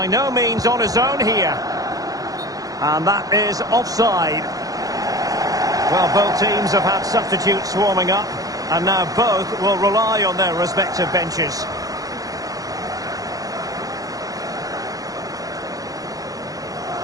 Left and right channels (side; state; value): left; late; 0.17 ms